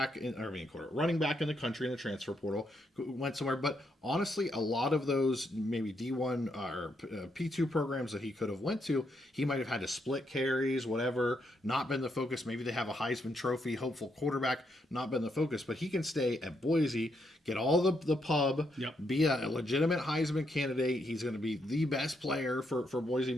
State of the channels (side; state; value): both; normal; correlation 0.78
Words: back in the country in the transfer portal, went somewhere. But honestly, a lot of those maybe D1 or P2 programs that he could have went to, he might have had to split carries, whatever, not been the focus. Maybe they have a Heisman Trophy hopeful quarterback, not been the focus. But he can stay at Boise, get all the pub, be a legitimate Heisman candidate. He's going to be the best player for Boise,